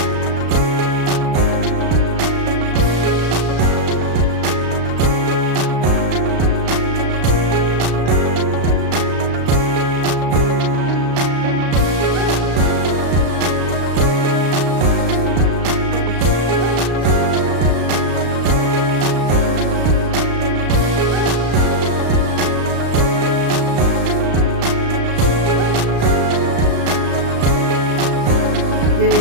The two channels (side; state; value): left; late; 35 ms